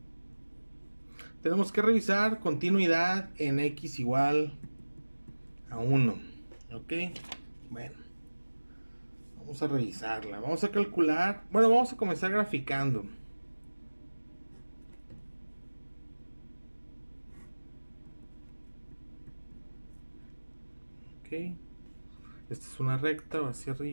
Tenemos que revisar continuidad en x igual a 1. ¿Ok? Bueno, vamos a revisarla. Vamos a calcular. Bueno, vamos a comenzar graficando. Ok. Esta es una recta, va hacia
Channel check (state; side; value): inverted; both; correlation -1.00